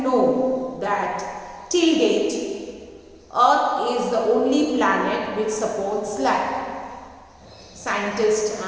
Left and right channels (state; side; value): identical; both; correlation 1.00